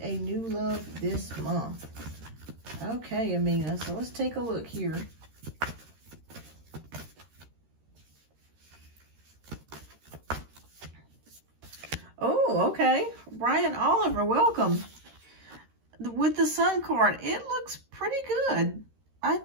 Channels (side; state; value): left; late; 13 ms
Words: a new love this month? Okay, Amina, so let's take a look here. Oh, okay. Brian Oliver, welcome. With the Sun card, it looks pretty good. I